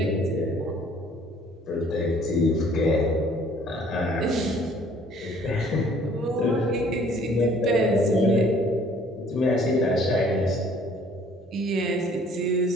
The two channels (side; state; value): both; normal; correlation 0.57